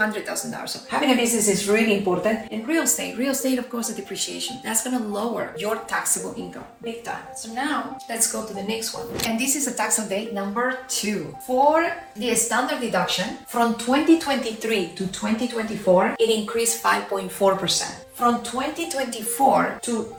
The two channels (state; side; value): identical; both; correlation 1.00